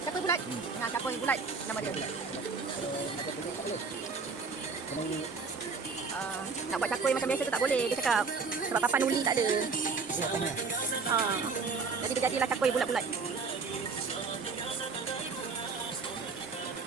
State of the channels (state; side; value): quieter; left; 4.7 dB